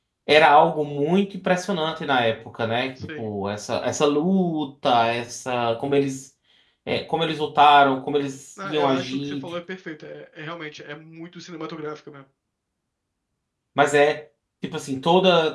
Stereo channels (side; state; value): both; identical; correlation 1.00